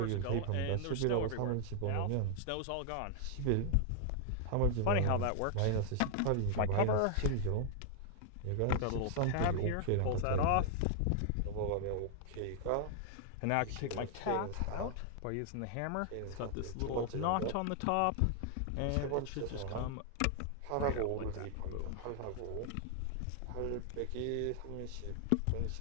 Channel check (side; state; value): both; different; correlation 0.00